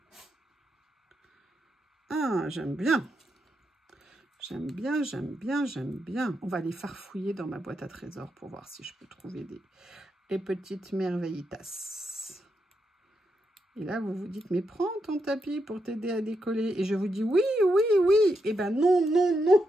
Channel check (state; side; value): normal; both; correlation 0.83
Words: Ah, j'aime bien. J'aime bien, j'aime bien, j'aime bien. On va aller farfouiller dans ma boîte à trésors pour voir si je peux trouver des petites merveillitas. Et là, vous vous dites, mais prends ton tapis pour t'aider à décoller. Et je vous dis, oui, oui, oui. Eh ben non, non, non.